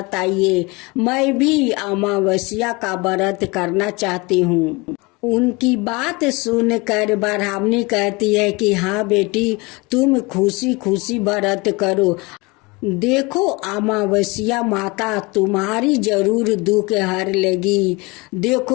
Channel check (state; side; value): quieter; right; 25.6 dB